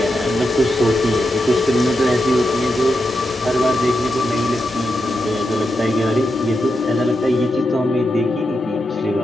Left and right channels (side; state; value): both; normal; correlation 0.86